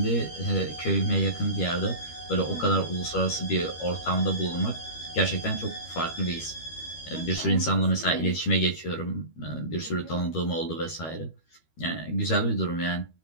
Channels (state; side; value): late; right; 13 ms